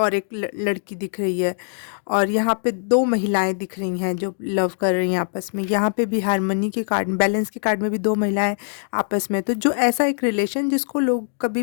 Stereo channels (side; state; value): right; silent; digital silence